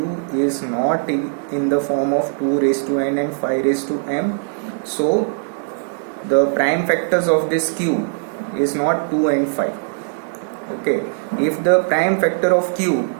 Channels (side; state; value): left; silent; digital silence